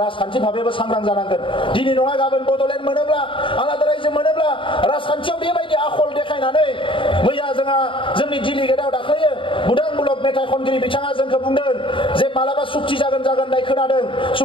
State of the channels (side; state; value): right; late; 0.25 ms